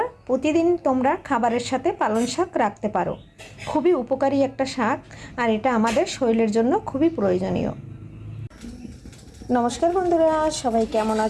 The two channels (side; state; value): both; identical; correlation 1.00